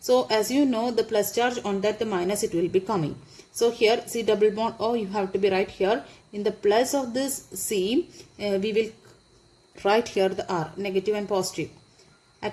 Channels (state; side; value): identical; both; correlation 1.00